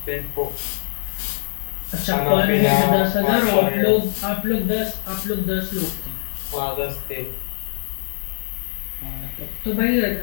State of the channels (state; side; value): silent; right; digital silence